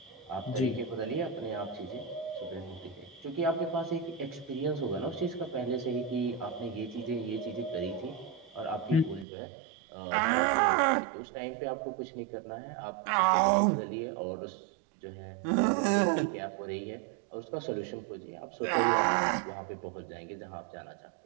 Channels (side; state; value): left; drops out; at 9.2 s